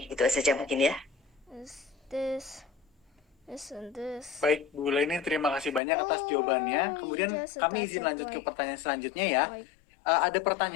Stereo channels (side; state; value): right; drops out; at 5.8 s